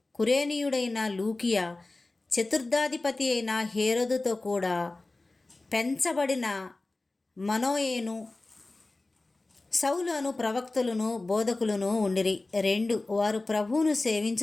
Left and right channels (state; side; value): quieter; right; 3.1 dB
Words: కురేనీయుడైన లూకియా, చతుర్థాధిపతి అయిన హేరోదుతో కూడా పెంచబడిన మనోయేను, సౌలు అను ప్రవక్తలను బోధకులను ఉండిరి. 2 వారు ప్రభువును